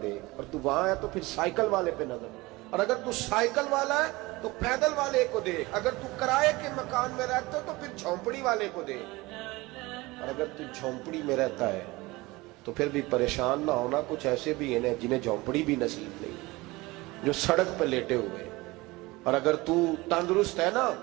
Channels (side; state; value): left; quieter; 21.6 dB